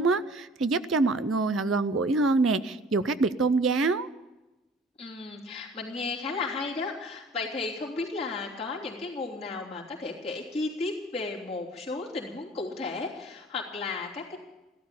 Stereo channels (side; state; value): both; normal; correlation 0.48